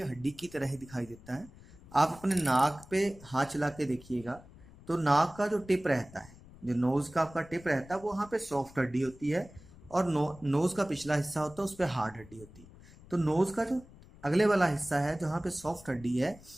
हड्डी की तरह ही दिखाई देता है. आप अपने नाक पे हाथ चला के देखिएगा तो नाक का जो टिप रहता है जो नोज का आपका टिप रहता है वो वहाँ पे सॉफ्ट हड्डी होती है, और नोज का पिछला हिस्सा होता है उस पर हार्ड हड्डी होती है। तो नोज का जो अगले वाला हिस्सा है जहाँ पे सॉफ्ट हड्डी है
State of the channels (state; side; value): noise; left; rumble, 21 dB below the sound